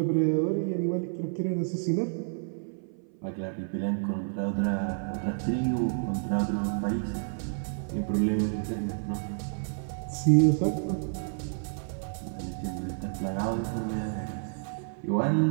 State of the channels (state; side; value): silent; left; 56 dB below the other